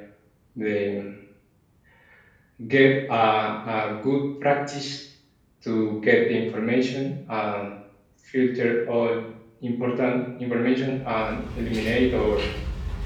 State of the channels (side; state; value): both; identical; correlation 1.00